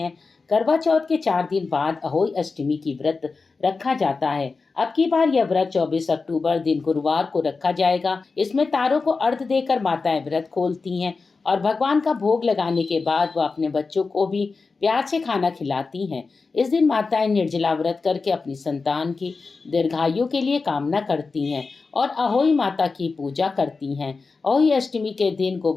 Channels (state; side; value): quieter; right; 4.3 dB